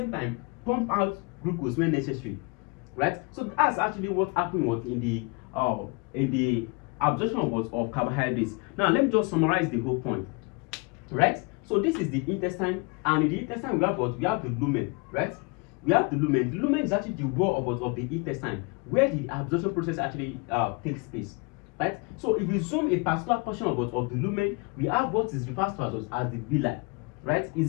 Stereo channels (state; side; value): quieter; right; 29.5 dB